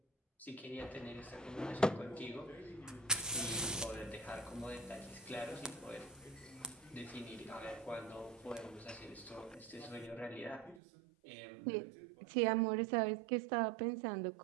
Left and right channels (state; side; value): drops out; left; at 10.8 s